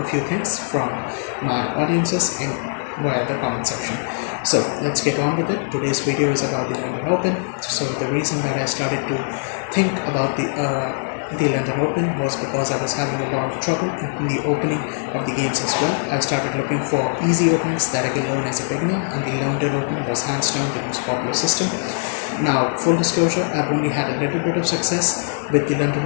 few things from my audiences in via the comment section. So let's get on with it. Today's video is about the London Open. So the reason that I started to think about the London Open was because I was having a lot of trouble in the opening of the games as well. I started looking for easy openings that I can learn as a beginner, and the London Open was hands down the most popular system. Now, full disclosure, I've only had a little bit of success with the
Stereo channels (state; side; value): silent; right; digital silence